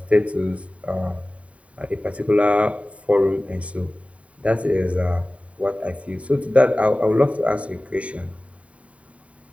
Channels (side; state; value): left; late; 0.065 ms